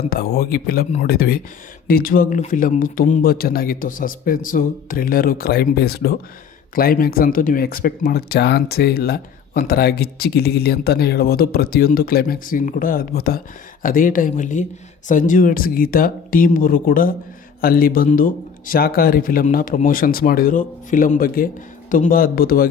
ಅಂತ ಹೋಗಿ ಫಿಲಮ್ ನೋಡಿದ್ವಿ. ನಿಜವಾಗ್ಲೂ ಫಿಲಮ್ಮು ತುಂಬ ಚೆನ್ನಾಗಿತ್ತು. Suspense, thriller, crime based. Climax ಅಂತೂ ನೀವು ಎಕ್ಸ್ಪೆಕ್ಟ್ ಮಾಡೋಕ್ಕೆ ಚಾನ್ಸೇ ಇಲ್ಲ. ಒಂಥರ ಗಿಚ್ಚಿ ಗಿಲಿ ಅಂತಲೇ ಹೇಳ್ಬೋದು. ಪ್ರತಿಯೊಂದು ಕ್ಲೈಮ್ಯಾಕ್ಸ್ ಸೀನ್ ಕೂಡ ಅದ್ಭುತ. ಅದೇ ಟೈಮಲ್ಲಿ ಸಂಜು ವೆಡ್ಸ್ ಗೀತಾ ಟೀಮ್ ಅವರು ಕೂಡ ಅಲ್ಲಿ ಬಂದು ಶಾಕಾಹಾರಿ ಫಿಲಮ್ನ ಪ್ರಮೋಷನ್ಸ್ ಮಾಡಿದರು. ಫಿಲಮ್ ಬಗ್ಗೆ ತುಂಬ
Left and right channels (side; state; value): right; quieter; 6.9 dB